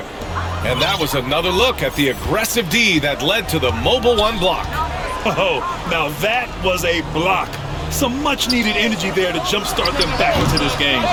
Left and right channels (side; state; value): both; identical; correlation 1.00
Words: And that was another look at the aggressive D that led to the mobile 1 block. Oh, now that was a block. Some much-needed energy there to jumpstart them back into this game.